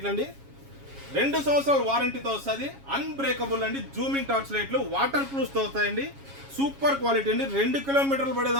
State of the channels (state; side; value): late; left; 7.3 ms